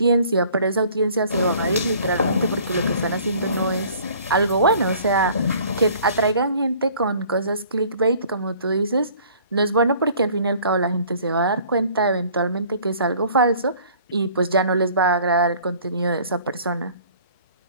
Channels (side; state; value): both; inverted; correlation -0.53